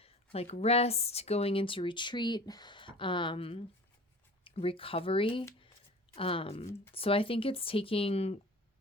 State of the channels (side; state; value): both; normal; correlation 0.41